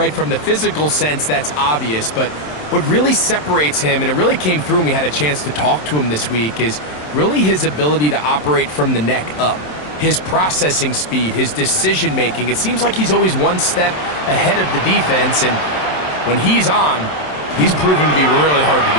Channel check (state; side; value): late; right; 27 ms